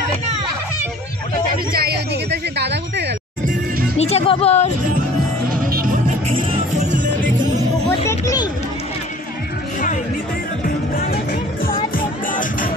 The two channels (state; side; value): normal; both; correlation 0.49